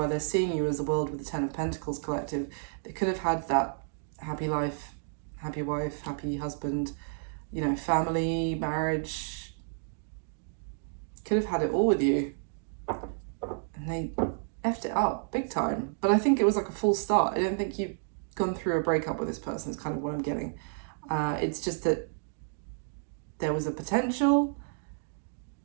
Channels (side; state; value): left; silent; digital silence